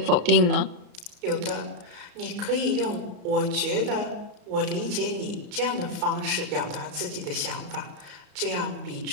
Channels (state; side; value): late; left; 34 ms